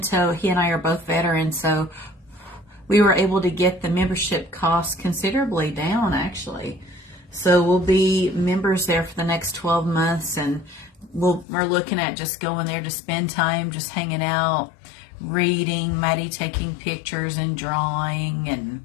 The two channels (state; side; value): drops out; right; at 11.5 s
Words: he and I are both veterans, so we were able to get the membership costs considerably down, actually. So we'll be members there for the next 12 months, and we're looking at just going there to spend time, just hanging out, reading, Maddie taking pictures and drawing,